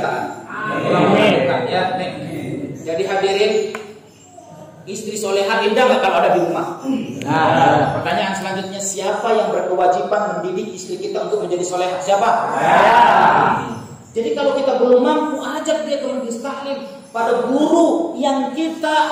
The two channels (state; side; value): identical; both; correlation 1.00